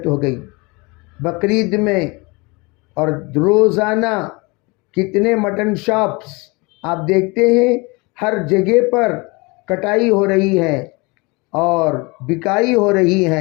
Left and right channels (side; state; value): right; quieter; 26.8 dB